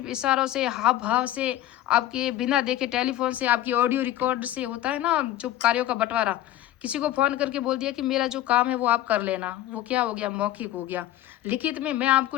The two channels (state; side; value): quieter; right; 13.6 dB